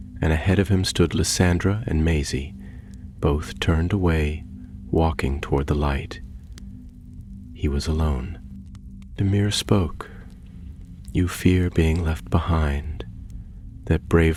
and ahead of him stood Lysandra and Maisie, both turned away, walking toward the light. He was alone. The mirror spoke. You fear being left behind, that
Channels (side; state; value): both; identical; correlation 1.00